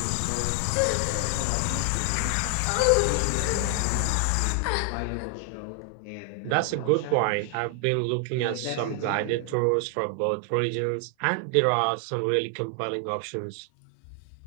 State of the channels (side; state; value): both; different; correlation 0.00